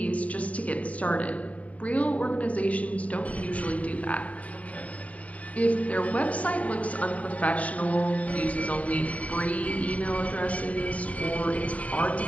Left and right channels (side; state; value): right; late; 0.068 ms